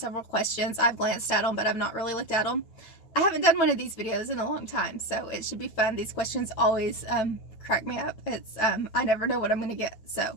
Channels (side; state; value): right; late; 9.2 ms